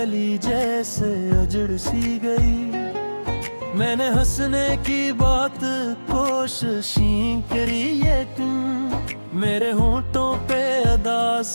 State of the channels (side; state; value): both; inverted; correlation -1.00